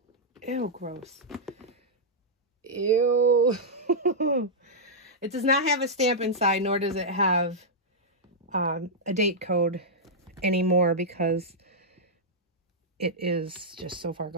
gross. Ew. It does not have a stamp inside, nor does it have a date code anymore, because it is just so far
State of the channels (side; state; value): both; normal; correlation -0.08